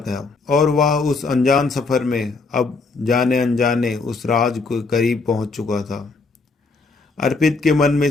और वह उस अनजान सफर में अब जाने अनजाने उस राज के करीब पहुंच चुका था। अर्पित के मन में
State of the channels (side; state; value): right; quieter; 4.0 dB